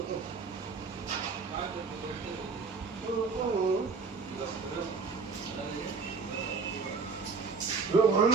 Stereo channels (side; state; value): left; quieter; 4.7 dB